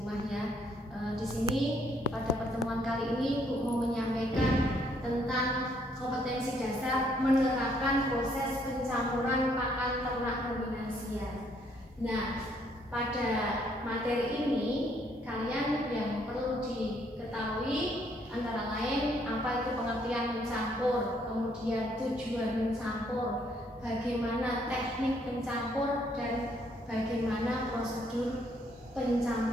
ya. Di sini pada pertemuan kali ini Bu mau menyampaikan tentang kompetensi dasar menerapkan proses pencampuran pakan ternak ruminansia. Nah, pada materi ini kalian yang perlu diketahui antara lain apa itu pengertian mencampur, kemudian tujuan mencampur, bagaimana teknik pencampur, dan bagaimana prosedur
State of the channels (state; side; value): normal; both; correlation 0.68